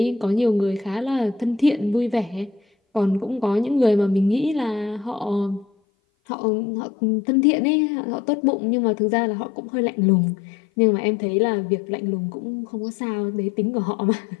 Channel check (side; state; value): right; drops out; at 5.7 s